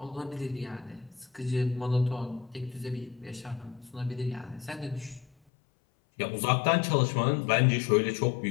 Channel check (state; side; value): drops out; right; at 5.3 s